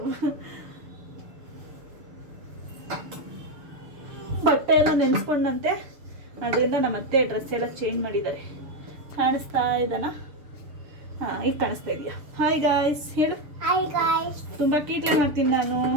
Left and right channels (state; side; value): late; left; 6.8 ms